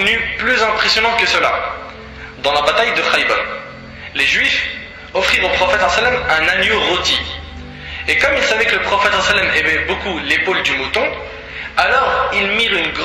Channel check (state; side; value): identical; both; correlation 1.00